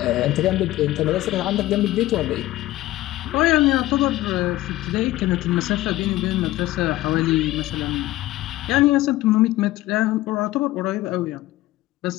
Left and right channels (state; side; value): quieter; right; 16.6 dB